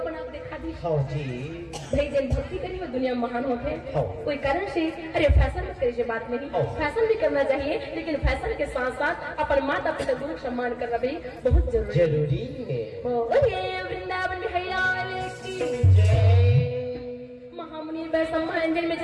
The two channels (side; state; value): both; identical; correlation 1.00